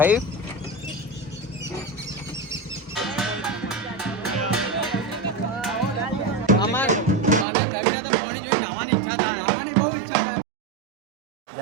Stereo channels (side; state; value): left; drops out; at 7.5 s